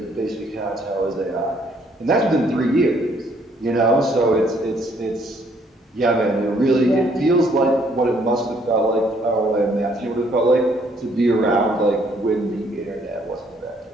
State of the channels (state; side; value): normal; both; correlation 0.66